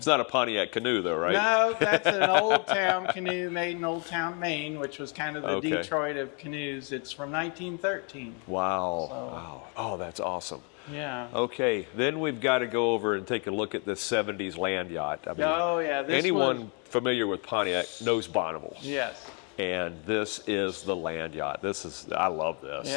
not a Pontiac canoe, though, right? No, that's an Old Town canoe made in Old Town, Maine, which was kind of the Okay. Detroit of canoes. It's from 1913. Wow. So- Wow. Oh, that's awesome. Yeah. Okay, then we've got to go over and take a look at this 70s land yacht. I mean, Oh, yeah. This anyone was, familiar with Pontiac knows Bonneville. yes. And this is the land yacht. I love this.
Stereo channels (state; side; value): quieter; right; 36.4 dB